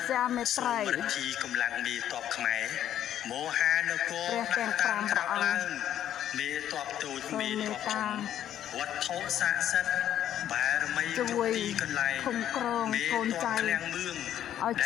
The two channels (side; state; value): right; quieter; 11.0 dB